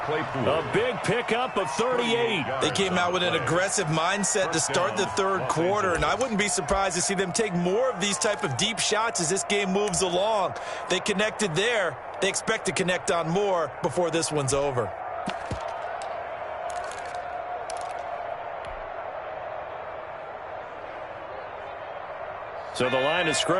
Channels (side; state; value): both; identical; correlation 1.00